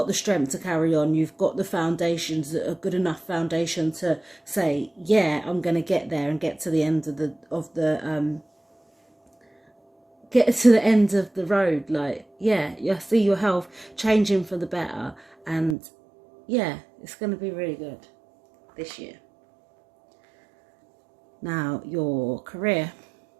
the strength to carry on. You've got the foundations, that are good enough foundation to say, yeah, I'm going to get there and get to the end of get to the end of the road. Like, yeah, you see your health changing for the better, and yeah, it's going to be really good this year. Now, your career.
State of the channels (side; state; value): left; drops out; at 15.8 s